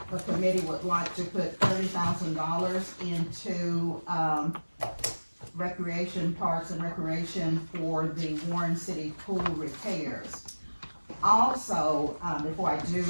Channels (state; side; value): inverted; both; correlation -1.00